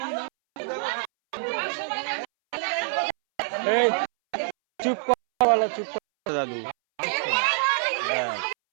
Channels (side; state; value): left; silent; 61 dB below the other